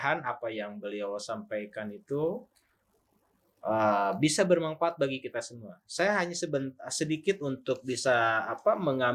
apa yang beliau sampaikan itu bisa bermanfaat bagi kita semua. Saya hanya sedikit untuk bisa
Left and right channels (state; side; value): identical; both; correlation 1.00